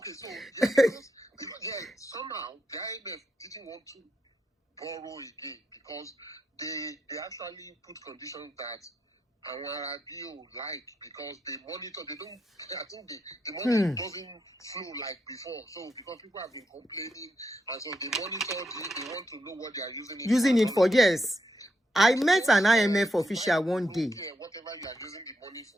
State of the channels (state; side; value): normal; both; correlation 0.82